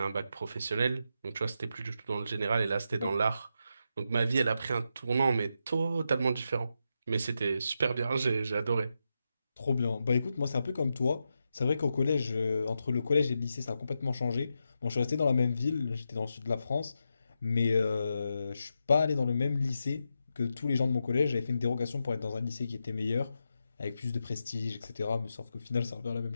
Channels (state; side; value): inverted; both; correlation -0.86